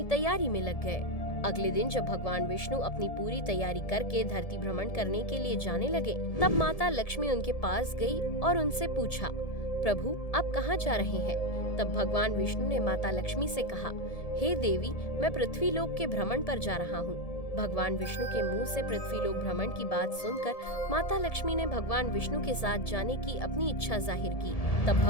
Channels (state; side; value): late; right; 1.7 ms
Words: तैयारी में लग गए। अगले दिन जब भगवान विष्णु अपनी पूरी तैयारी करके धरती भ्रमण करने के लिए जाने लगे, तब माता लक्ष्मी उनके पास गई और उनसे पूछा, प्रभु आप कहाँ जा रहे हैं? तब भगवान विष्णु ने माता लक्ष्मी से कहा, हे देवी, मैं पृथ्वी लोक के भ्रमण पर जा रहा हूँ। भगवान विष्णु के मुंह से पृथ्वी लोक भ्रमण की बात सुनकर माता लक्ष्मी ने भगवान विष्णु के साथ जाने की अपनी इच्छा जाहिर की। तब